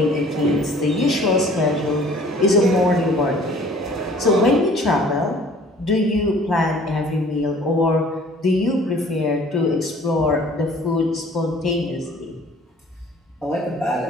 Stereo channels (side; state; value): both; normal; correlation 0.52